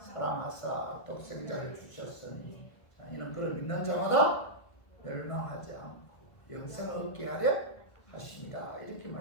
사랑하사 독생자를 주셨으니 이는 그를 믿는 자마다 멸망하지 않고 영생을 얻게 하려 하십니다. 이렇게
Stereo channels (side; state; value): right; late; 1.5 ms